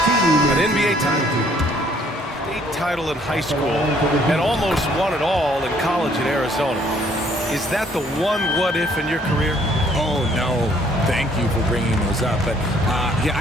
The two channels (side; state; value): both; normal; correlation 0.63